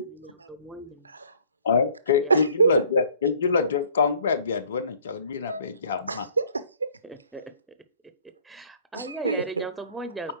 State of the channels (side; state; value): both; inverted; correlation -0.56